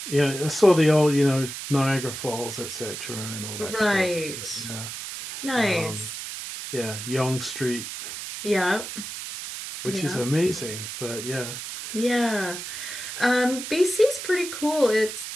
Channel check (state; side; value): noise; right; hiss, 8 dB below the sound